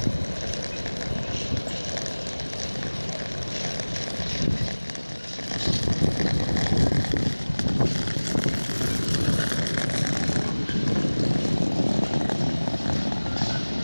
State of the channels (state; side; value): inverted; both; correlation -1.00